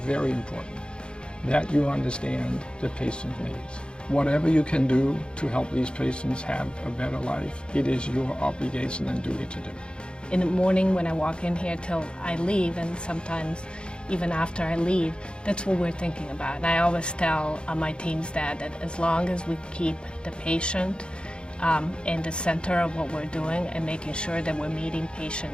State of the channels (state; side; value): late; right; 0.053 ms